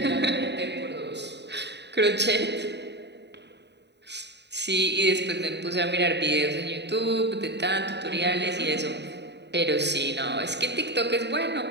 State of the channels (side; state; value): left; late; 0.50 ms